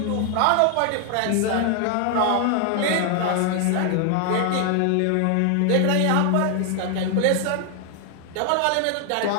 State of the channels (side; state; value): both; different; correlation 0.00